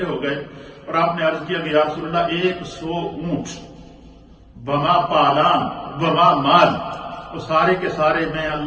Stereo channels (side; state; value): both; identical; correlation 1.00